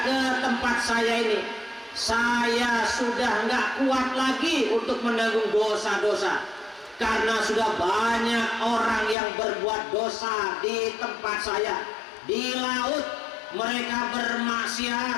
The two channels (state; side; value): drops out; right; at 9.2 s